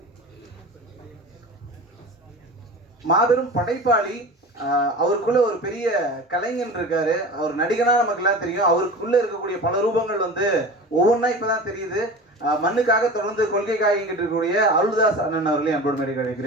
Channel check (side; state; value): both; normal; correlation 0.34